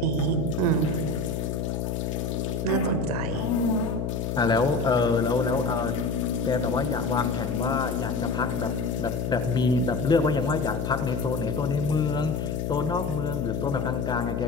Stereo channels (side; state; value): left; noise; hum, 2 dB below the sound